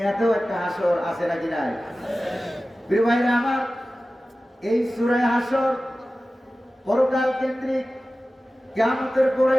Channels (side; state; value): both; normal; correlation 0.96